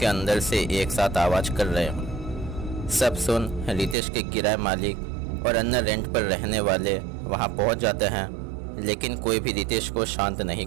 अंदर से एक साथ आवाज़ कर रहे हों। सब सुन रितेश के किराए मालिक और अन्य रेंट पर रहने वाले वहाँ पहुँच जाते हैं, लेकिन कोई भी रितेश को शांत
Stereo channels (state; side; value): drops out; left; at 4.0 s